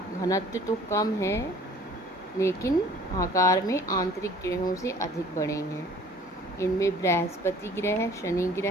घनत्व तो कम है लेकिन आकार में आंतरिक ग्रहों से अधिक बड़े हैं। इनमें बृहस्पति ग्रह, शनि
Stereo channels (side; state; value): both; normal; correlation 0.52